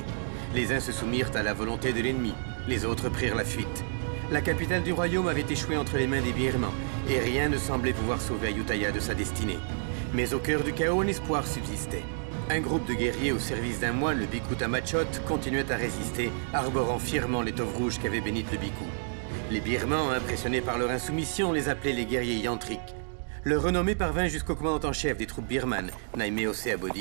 Les uns se soumirent à la volonté de l'ennemi, les autres prirent la fuite. La capitale du royaume avait échoué entre les mains des Birmans, et rien ne semblait pouvoir sauver Ayutthaya de sa destinée. Mais au cœur du chaos, un espoir subsistait. Un groupe de guerriers au service d'un moine, le Bhikkhu Tamachot, continuait à résister, arborant fièrement l'étoffe rouge qu'avait bénite le Bhikkhu. Les Birmans, impressionnés par leur insoumission, les appelaient les guerriers yantriques. Leur renommée parvint jusqu'au commandant en chef des troupes birmanes, Naimeo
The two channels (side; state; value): left; silent; digital silence